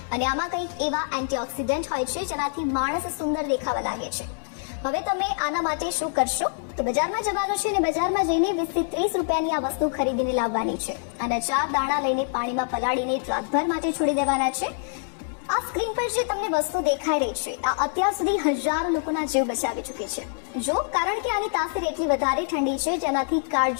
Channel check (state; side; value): silent; right; digital silence